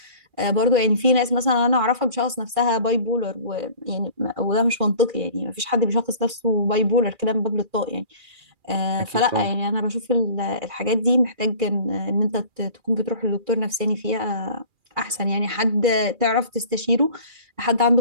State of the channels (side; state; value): left; late; 2.4 ms